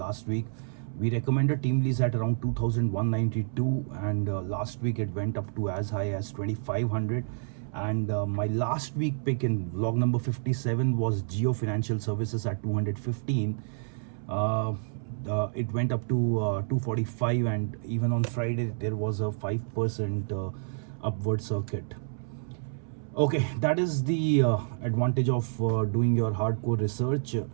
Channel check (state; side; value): silent; left; 59 dB below the other